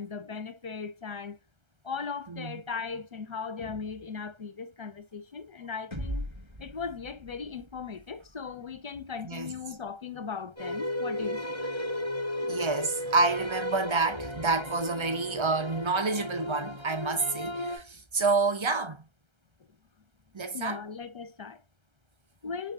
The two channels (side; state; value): left; late; 1.3 ms